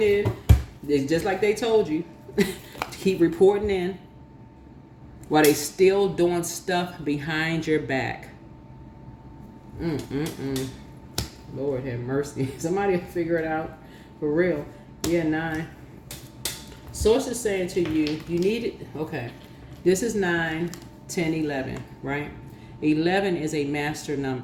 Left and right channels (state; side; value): identical; both; correlation 1.00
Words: in. It's just like they told you. Keep reporting in. While they still doing stuff behind your back. Lord have mercy. Somebody figure it out. For real. Yeah, 9. Source is saying to you, you need it. Okay. This is 9, 10, 11, right? 11 is a master